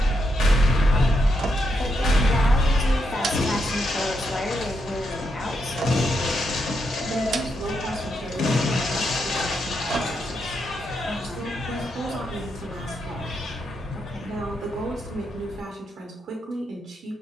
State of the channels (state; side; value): normal; both; correlation 0.82